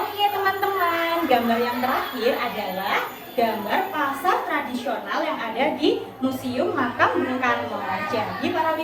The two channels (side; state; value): both; identical; correlation 1.00